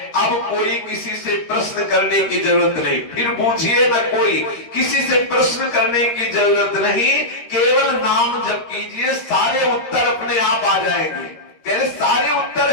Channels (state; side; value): late; right; 13 ms